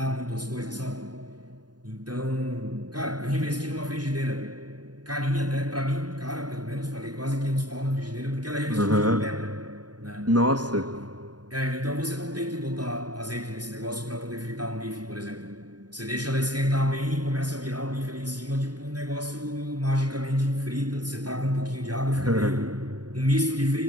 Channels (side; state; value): left; late; 0.69 ms